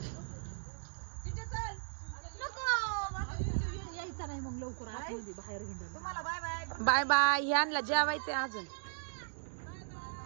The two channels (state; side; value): silent; left; digital silence